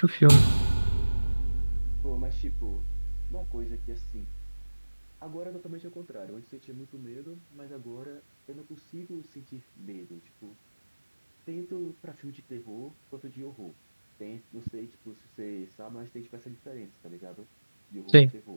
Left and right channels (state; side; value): inverted; both; correlation -1.00